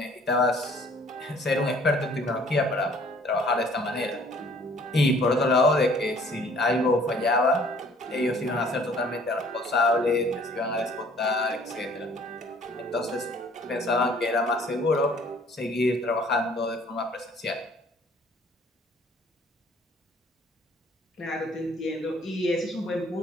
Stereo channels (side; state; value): both; normal; correlation 0.56